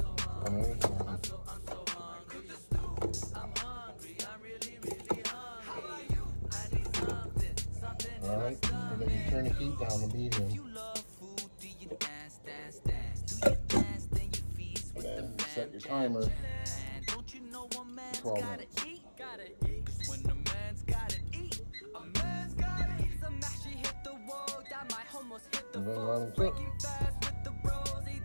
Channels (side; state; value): both; inverted; correlation -1.00